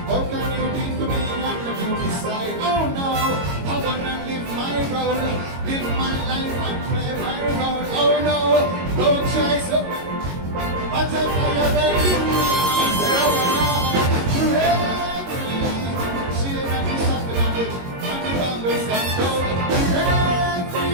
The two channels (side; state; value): left; late; 22 ms